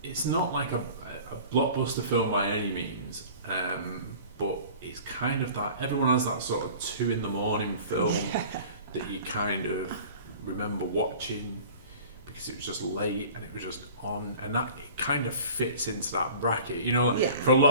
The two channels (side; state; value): both; inverted; correlation -0.43